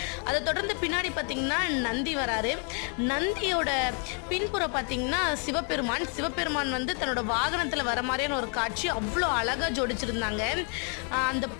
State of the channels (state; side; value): quieter; right; 39.8 dB